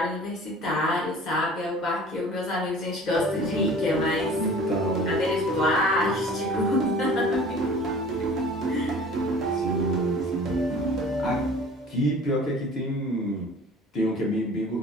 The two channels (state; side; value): normal; both; correlation 0.45